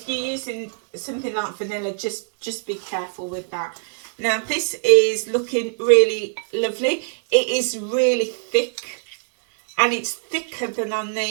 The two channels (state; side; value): silent; left; digital silence